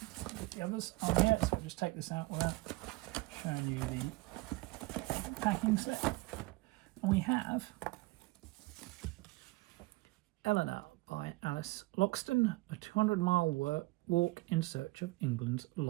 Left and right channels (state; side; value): quieter; left; 22.1 dB